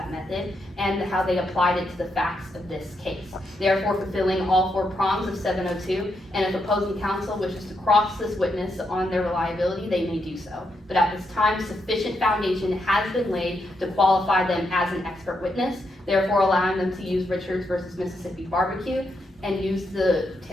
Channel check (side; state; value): both; normal; correlation 0.81